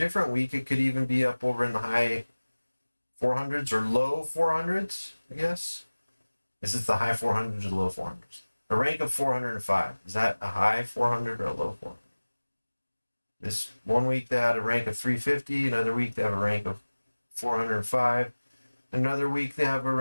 week, it could even be up over in the high 400s or low 400s, I guess. Is it the high 400s or low 400s? A rank of 405. Is that a high 400 or a low 400? This one week they had a rank of 350. Another week they have a rank of 405. Another week they have a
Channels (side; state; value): both; inverted; correlation -1.00